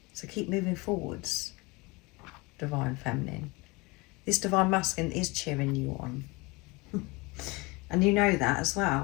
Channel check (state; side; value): quieter; right; 24.9 dB